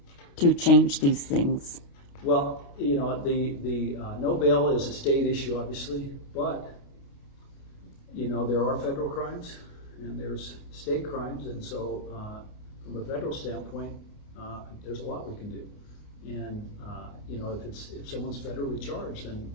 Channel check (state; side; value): late; right; 29 ms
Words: to change these things? Well, the no bail is a state issue, obviously, but there are federal crimes and there's state crimes, and so from a federal standpoint, there's a lot we can do. And if someone's federally charged, then